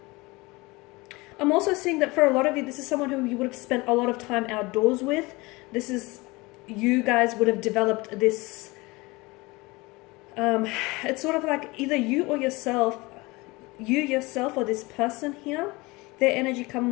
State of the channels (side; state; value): right; quieter; 23.4 dB